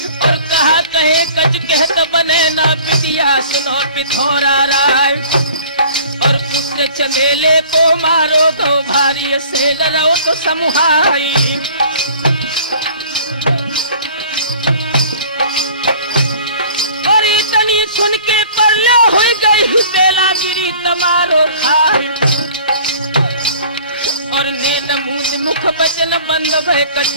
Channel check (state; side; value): inverted; both; correlation -0.49